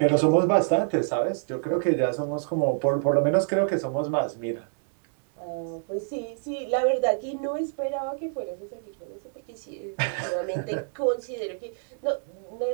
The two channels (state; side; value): silent; left; digital silence